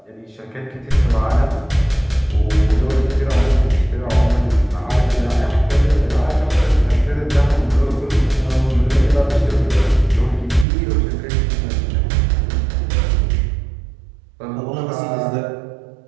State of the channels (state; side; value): drops out; left; at 10.7 s